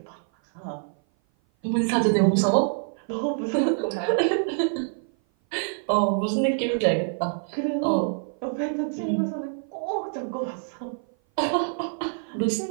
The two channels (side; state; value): left; silent; 56 dB below the other